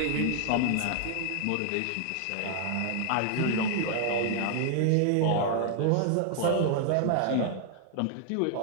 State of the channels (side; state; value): both; different; correlation 0.00